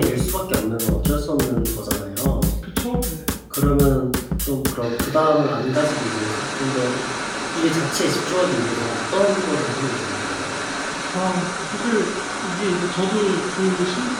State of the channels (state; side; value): identical; both; correlation 1.00